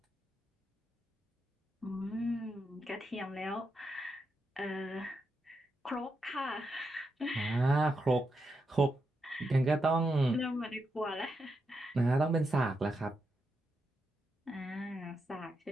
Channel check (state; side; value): normal; both; correlation 0.84